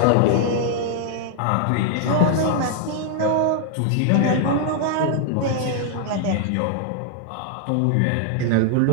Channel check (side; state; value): both; different; correlation 0.00